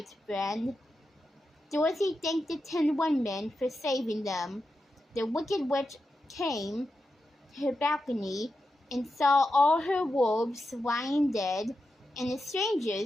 friend." Dorothy thanked the Tin Woodman for saving them. The Wicked Witch came to her balcony and saw all her wolves lying dead and the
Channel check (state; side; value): normal; both; correlation 0.89